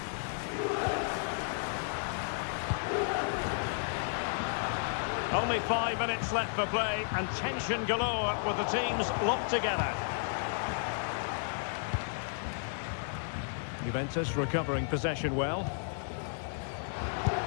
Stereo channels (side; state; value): right; silent; 56 dB below the other